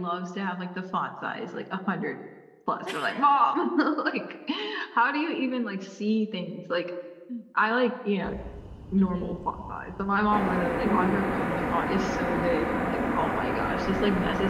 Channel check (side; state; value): both; identical; correlation 1.00